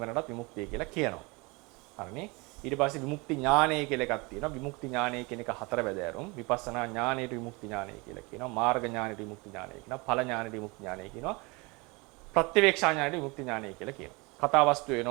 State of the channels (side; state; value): left; quieter; 26.9 dB